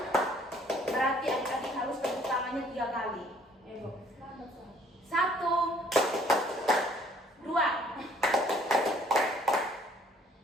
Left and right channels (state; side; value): normal; both; correlation 0.59